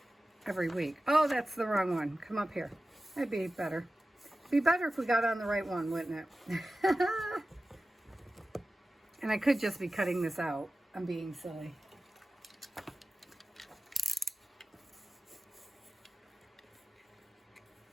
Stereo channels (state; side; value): normal; both; correlation 0.95